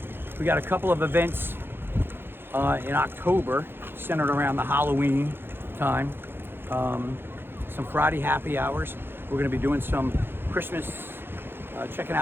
we got a couple of events in October centered around the Halloween time. Some Friday happy hours. We're gonna be doing some Christmas, checking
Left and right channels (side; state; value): left; late; 0.10 ms